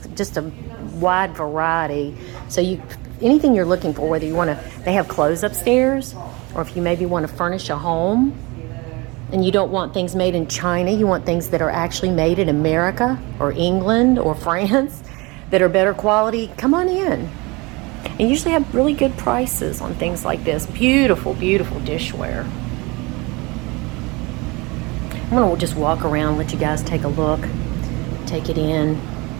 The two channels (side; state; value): left; quieter; 25.5 dB